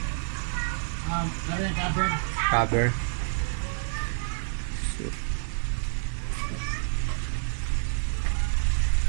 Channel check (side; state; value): left; silent; digital silence